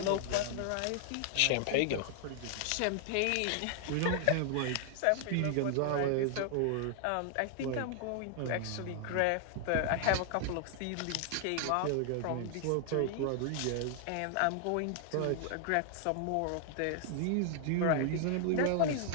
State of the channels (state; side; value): different; both; correlation 0.00